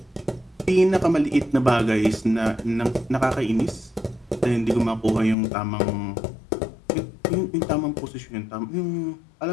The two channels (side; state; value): right; drops out; at 5.4 s